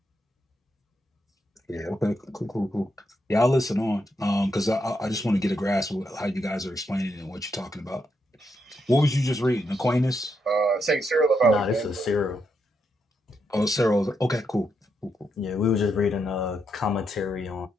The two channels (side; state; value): both; normal; correlation 0.81